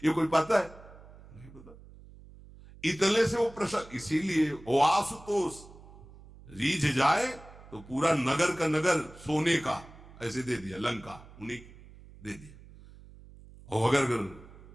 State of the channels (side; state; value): right; noise; hum, 20 dB below the sound